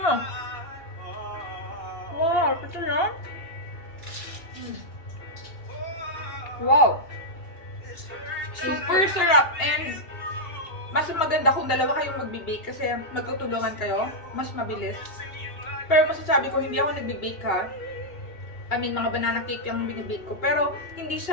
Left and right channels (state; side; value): late; right; 2.9 ms